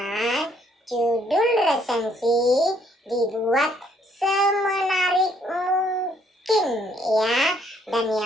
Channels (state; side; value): normal; both; correlation 0.67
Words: judul resensi dibuat semenarik mungkin, ya. Dan